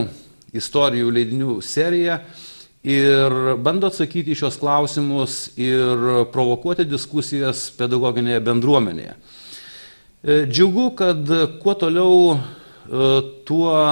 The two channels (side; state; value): both; inverted; correlation -1.00